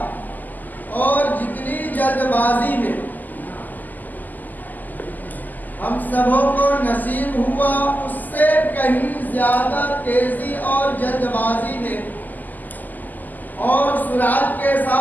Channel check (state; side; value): late; right; 0.084 ms